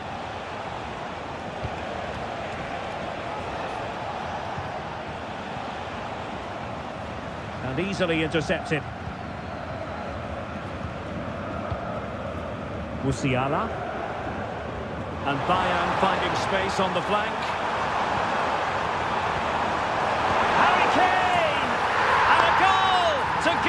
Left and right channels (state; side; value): identical; both; correlation 1.00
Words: And easily intercepted. Musiala. And Bayern finding space on the flank. Harry Kane! And a goal to